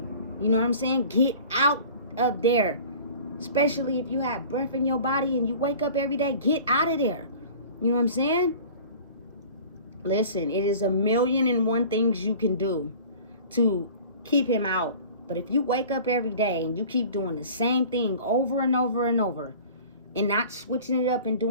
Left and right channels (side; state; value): both; inverted; correlation -0.43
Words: You know what I'm saying? Get out of there. Especially if you have breath in your body and you wake up every day, get out of there. You know what I'm saying? Listen, it is 1,000,001 things you can do to keep him out. But if you wake up every day and you keep doing the same thing over and over and over and not switching it up and